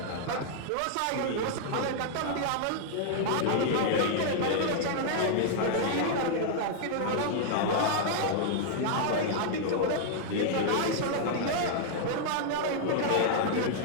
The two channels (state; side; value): different; both; correlation -0.01